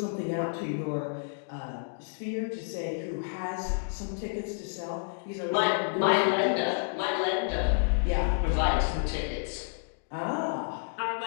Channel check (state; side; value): silent; right; digital silence